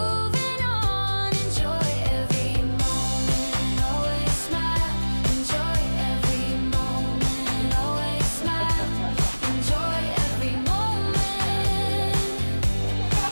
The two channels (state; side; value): inverted; both; correlation -1.00